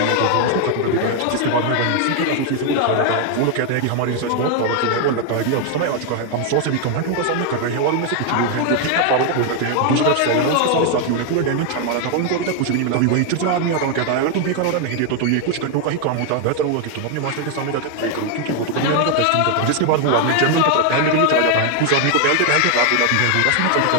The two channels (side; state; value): both; different; correlation 0.01